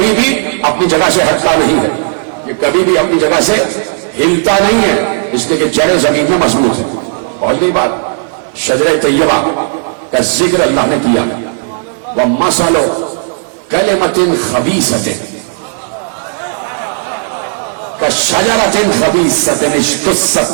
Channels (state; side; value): silent; left; 66 dB below the other